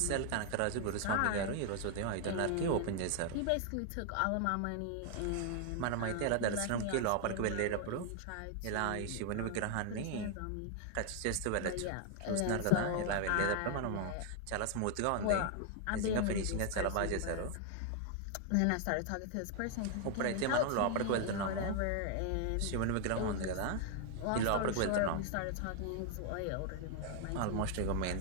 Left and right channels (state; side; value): different; both; correlation 0.00